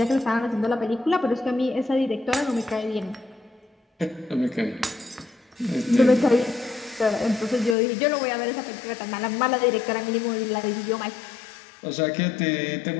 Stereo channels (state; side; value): drops out; right; at 7.8 s